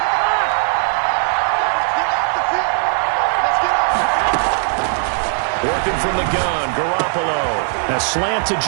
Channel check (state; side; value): silent; left; 57 dB below the other